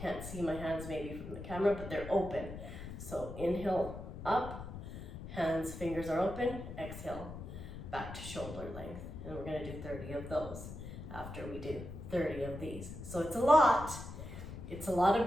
see my hands maybe from the camera, but they're open. So inhale up, hands, fingers are open, exhale, back to shoulder length. And we're gonna do 30 of those after we do 30 of these. So it's a lot of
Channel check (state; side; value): noise; left; rumble, 10 dB below the sound